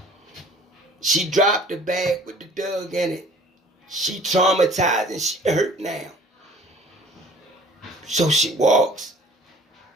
She dropped the bag with the dog in it. She traumatized and she hurt now. So she walks.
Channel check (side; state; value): both; normal; correlation 0.50